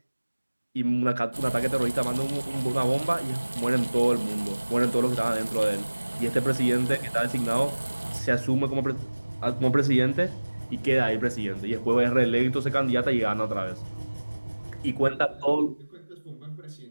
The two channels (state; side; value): inverted; both; correlation -1.00